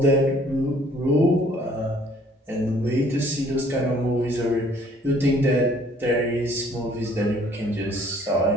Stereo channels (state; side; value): normal; both; correlation 0.58